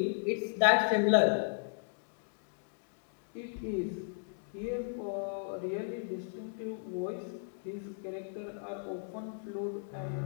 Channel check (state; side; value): silent; right; digital silence